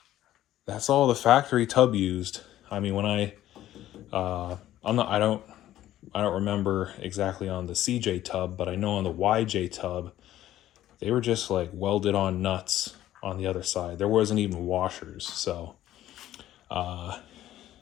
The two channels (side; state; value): right; quieter; 13.3 dB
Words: that's all the factory tub used. I mean, when I don't remember exactly on the CJ tub, but I know on the YJ tub, they were just like welded on nuts on the other side. There wasn't even washers, so